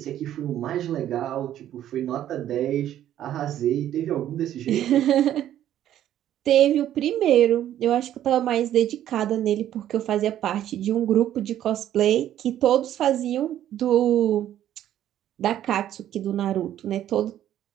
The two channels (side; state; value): left; quieter; 11.6 dB